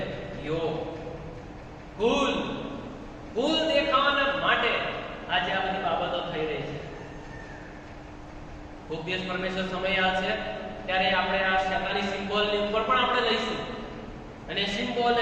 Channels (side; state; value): both; identical; correlation 1.00